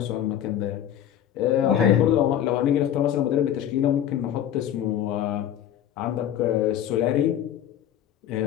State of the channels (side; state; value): right; quieter; 10.6 dB